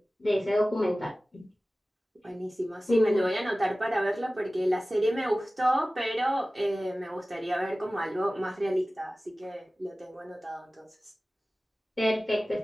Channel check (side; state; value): both; normal; correlation 0.97